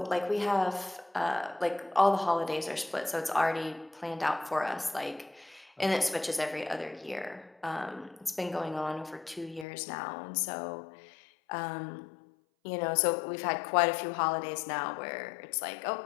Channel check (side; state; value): right; drops out; at 9.7 s